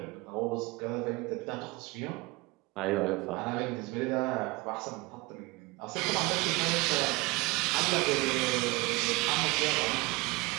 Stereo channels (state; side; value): quieter; left; 23.8 dB